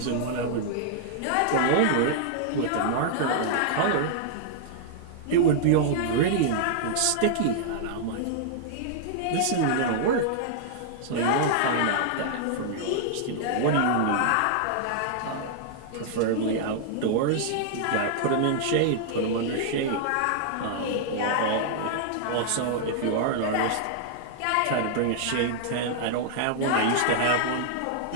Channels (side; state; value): both; different; correlation -0.01